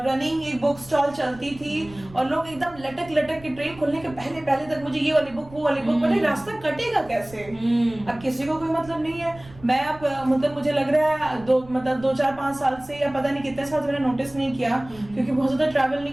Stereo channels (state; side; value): noise; right; rumble, 21 dB below the sound